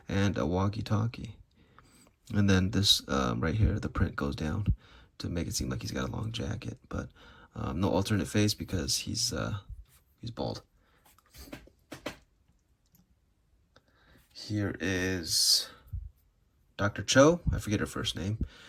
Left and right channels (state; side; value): identical; both; correlation 1.00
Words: and a walkie-talkie. And then this right here, the print goes down to make it seem like he's got a long jacket, but no alternate face because he's bald. Here is Dr. Cho. I forget her first name,